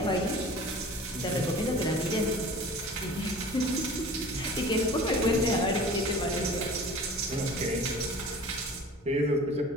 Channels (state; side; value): normal; both; correlation 0.42